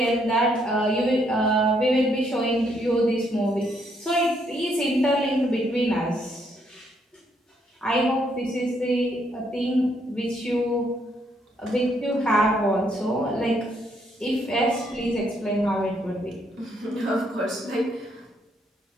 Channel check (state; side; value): normal; both; correlation 0.72